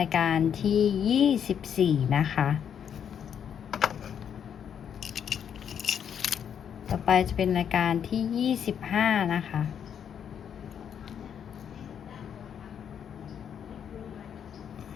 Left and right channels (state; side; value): quieter; right; 8.3 dB